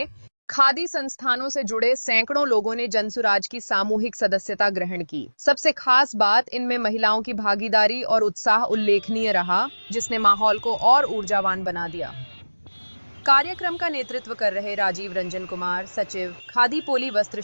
खादी संस्थानों से जुड़े सैकड़ों लोगों ने जनसुराज की सामूहिक सदस्यता ग्रहण की। सबसे खास बात, इनमें महिलाओं की भागीदारी और उत्साह उल्लेखनीय रहा, जिसने माहौल को और ऊर्जावान बना दिया। कार्यक्रम का नेतृत्व कर रहे राजीव रंजन कुमार, सचिव खादी पोली वस्त्र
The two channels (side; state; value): both; inverted; correlation -1.00